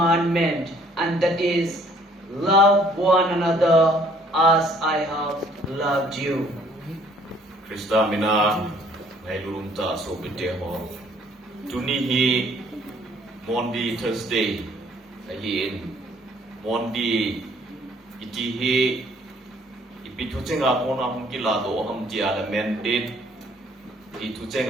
and that is, love one another as I have loved you. Krista mina ngay lulunta so biteho. Tuni hi Maundy Thursday ahin Maundy iti hi ipitucenga kona hongkila do ham tia la mandate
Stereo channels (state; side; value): normal; both; correlation 0.60